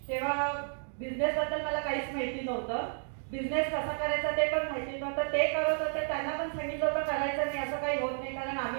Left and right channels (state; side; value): silent; left; digital silence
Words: तेव्हा बिझनेसबद्दल मला काहीच माहिती नव्हतं. बिझनेस कसा करायचा ते पण माहिती नव्हतं. ते करत होते, त्यांना पण सांगितलं होतं करायचं नाही, असं काही होत नाही, कारण